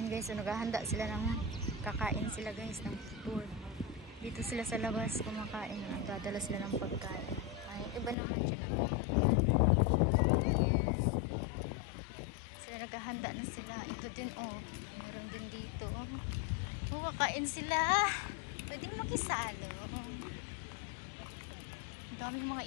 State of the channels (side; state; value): right; drops out; at 8.2 s